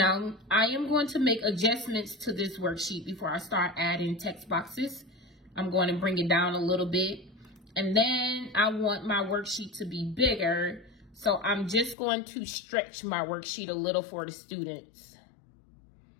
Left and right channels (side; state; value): right; drops out; at 12.0 s